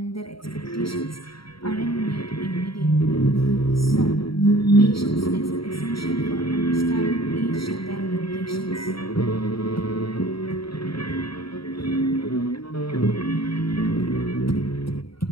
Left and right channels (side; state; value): right; late; 0.75 ms